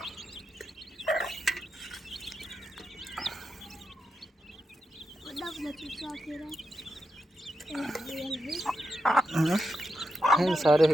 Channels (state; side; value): normal; both; correlation 0.86